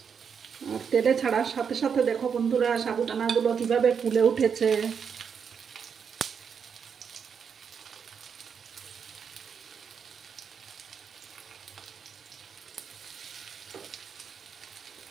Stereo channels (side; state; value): left; quieter; 6.8 dB